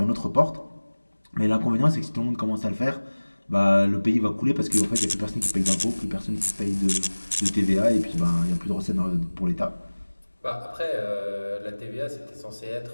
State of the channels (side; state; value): both; inverted; correlation -1.00